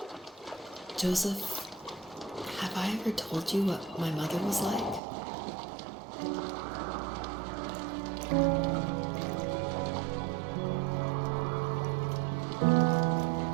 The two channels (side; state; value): left; drops out; at 5.0 s